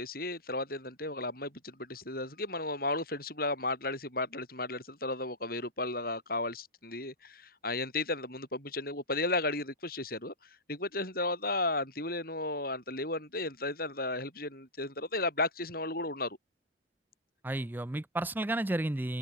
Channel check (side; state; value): both; normal; correlation -0.08